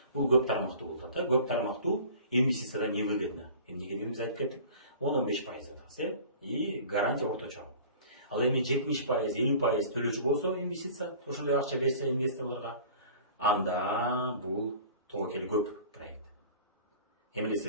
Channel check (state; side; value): inverted; both; correlation -0.43